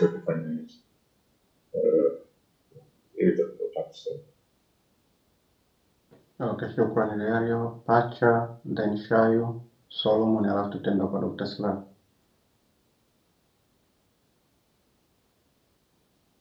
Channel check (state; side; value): identical; both; correlation 1.00